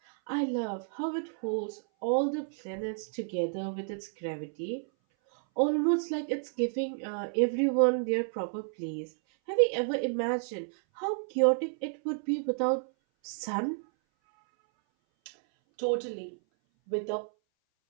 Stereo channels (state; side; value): silent; left; 57 dB below the other